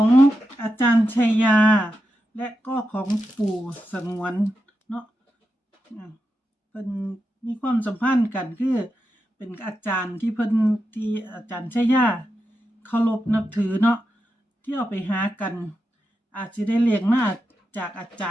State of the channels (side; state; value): both; normal; correlation 0.88